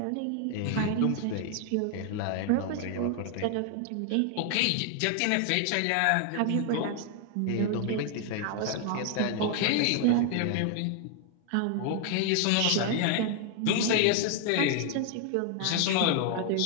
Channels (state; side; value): different; both; correlation 0.00